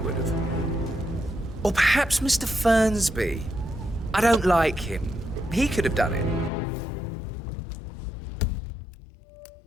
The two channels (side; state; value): right; drops out; at 6.5 s